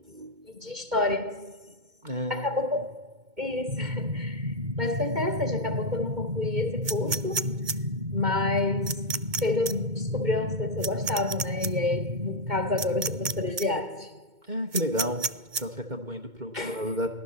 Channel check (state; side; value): late; left; 2.2 ms